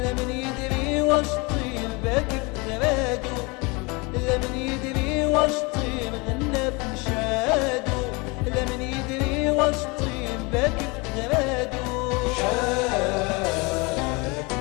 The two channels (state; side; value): quieter; right; 27.5 dB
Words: يدري واش طير باكي في غرادو لمن يدري واش طير غنى في نشادو لمن يدري واش طير باكي في غرادو